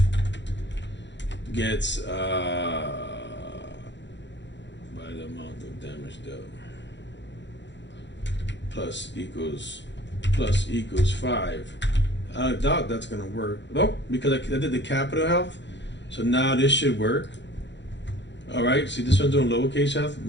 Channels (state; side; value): late; right; 0.52 ms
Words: gets by the amount of damage dealt plus equals 5. I doubt that's gonna work. Nope, because I did the capital health, so now this should work. All right, see this one's doing lowercase health